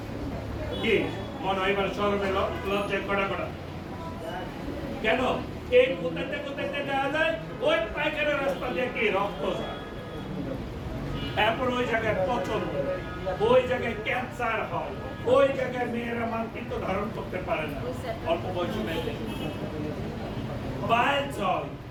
কি মনে হয় এবার শরমে লজ্জায় কড়া কড়া কেন এই কোথাতে যাওয়া যায় ওই পায়খানা রাস্তা দিয়ে কি রক্ত যায় এরপর ওই জায়গায় পচন ওই জায়গায় ক্যান্সার হয় ওই জায়গায় মেয়েরা মাতৃত্ব ধারণ করতে পারে না অল্প বয়সী মেয়েদের বাইল হয়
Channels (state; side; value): identical; both; correlation 1.00